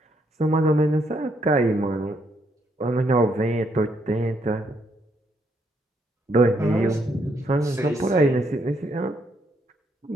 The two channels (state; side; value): normal; both; correlation 0.74